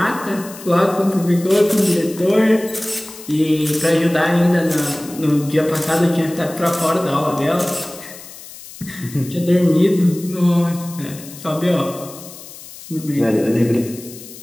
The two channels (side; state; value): left; noise; hiss, 16 dB below the sound